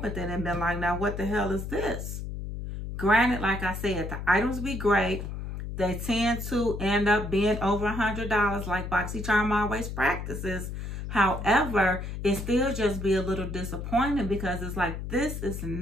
it and been like, now what the hell is this? Granted, like I said, the items be great. They tend to end up being over $100 like BoxyCharm always practices. However, it still just be a little disappointing because it's like, this is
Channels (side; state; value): left; noise; hum, 6 dB below the sound